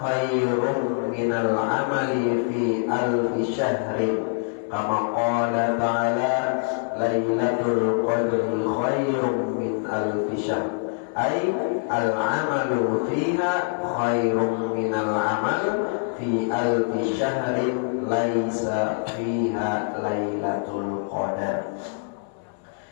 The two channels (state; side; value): silent; right; 62 dB below the other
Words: minal amali fi alfi syahrin kama qala ta'ala lailatul qadri khairun min alfi syahr, ay al-amalu fiha khairun minal amal fi alfi syahrin laisa fiha lailatul qadar,